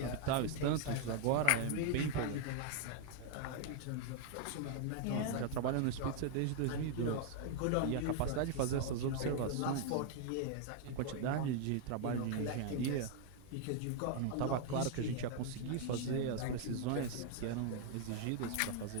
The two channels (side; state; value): both; different; correlation 0.00